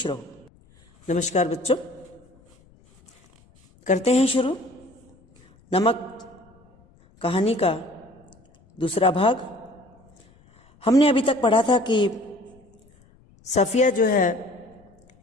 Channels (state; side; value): noise; left; rumble, 30 dB below the sound